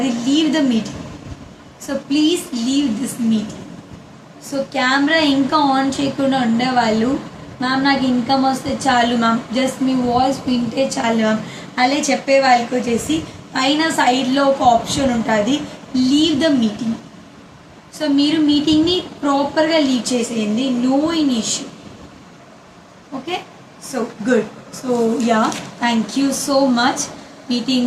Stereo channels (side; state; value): both; identical; correlation 1.00